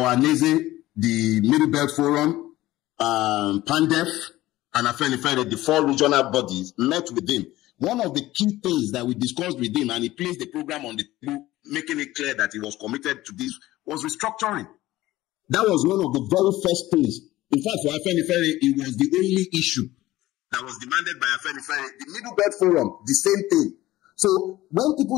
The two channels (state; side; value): quieter; right; 16.7 dB